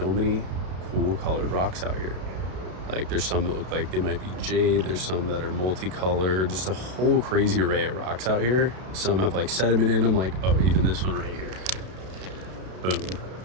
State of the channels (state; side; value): late; left; 32 ms